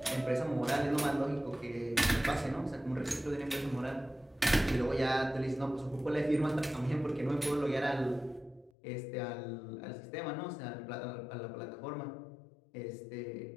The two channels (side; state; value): right; drops out; at 8.7 s